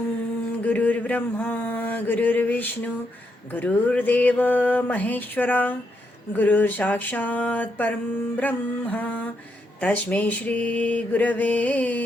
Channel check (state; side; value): normal; both; correlation 0.80